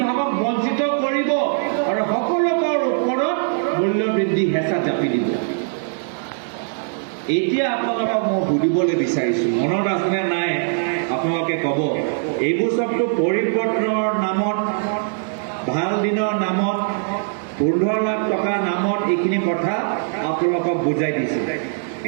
বঞ্চিত কৰিব আৰু সকলোকৰ ওপৰত মূল্য বৃদ্ধি হেঁচা জাপি দিব। এতিয়া আপোনালোকক মই সুধিবলৈ বিচাৰিছোঁ, মনত আছেনে নাই আপোনালোকে ক'ব। এইবোৰ চবটো পৰিৱৰ্তনৰ নামত, ভাল দিনৰ নামত, 15 লাখ টকাৰ নামত এইখিনি কথা আপোনালোকক বুজাই দিছে।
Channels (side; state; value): left; silent; digital silence